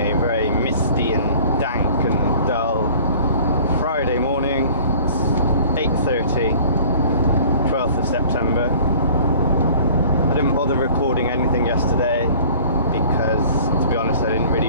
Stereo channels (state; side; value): inverted; both; correlation -0.49